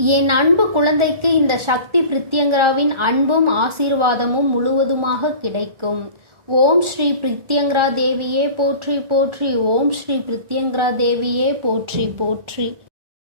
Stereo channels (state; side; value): late; left; 1.4 ms